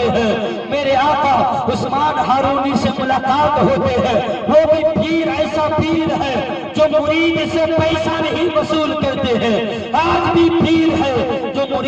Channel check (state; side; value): identical; both; correlation 1.00